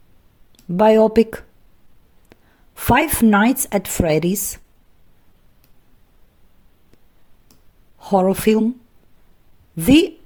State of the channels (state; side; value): identical; both; correlation 1.00